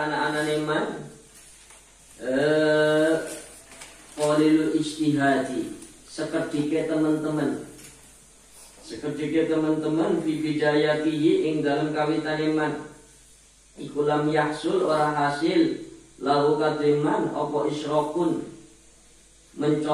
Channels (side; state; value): both; identical; correlation 1.00